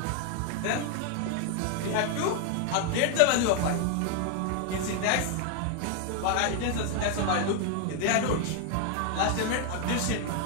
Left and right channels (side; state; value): both; different; correlation 0.00